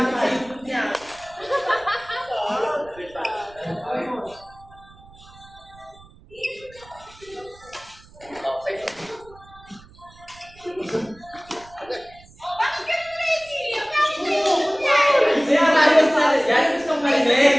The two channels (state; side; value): noise; right; rumble, 24 dB below the sound